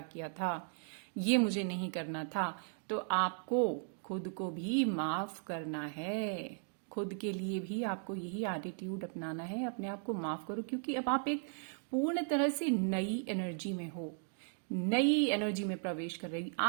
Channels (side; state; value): left; silent; 53 dB below the other